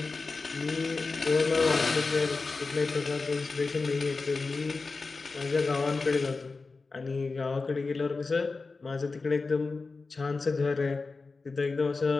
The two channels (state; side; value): quieter; right; 4.0 dB